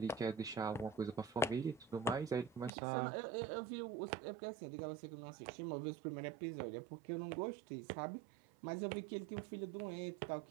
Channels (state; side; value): drops out; left; at 2.7 s